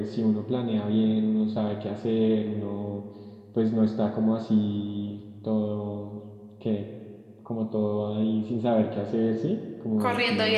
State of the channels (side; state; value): both; identical; correlation 1.00